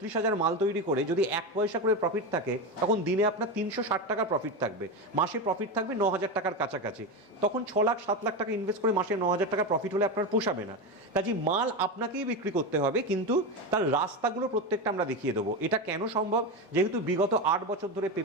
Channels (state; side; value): normal; both; correlation 0.16